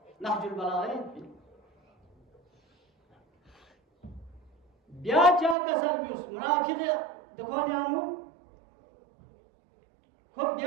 नहजुल बलागह ब्या चा का सर्विस मुनाफिक देखो न्यानु खूब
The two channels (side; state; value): left; drops out; at 5.6 s